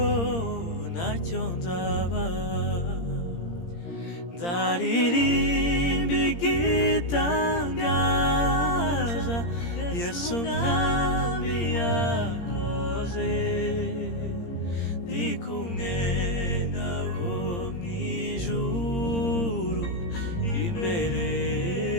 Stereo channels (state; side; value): late; right; 17 ms